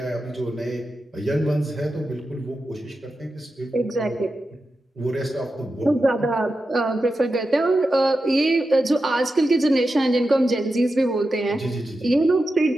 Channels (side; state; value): both; normal; correlation 0.90